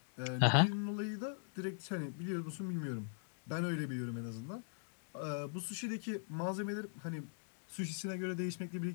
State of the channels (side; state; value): right; silent; digital silence